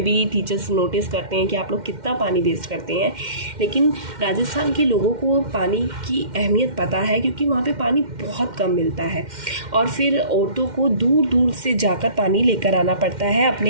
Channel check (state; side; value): late; left; 2.1 ms